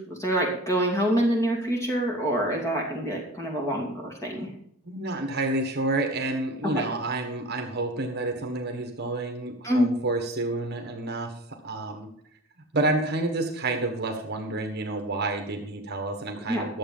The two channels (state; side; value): normal; both; correlation 0.35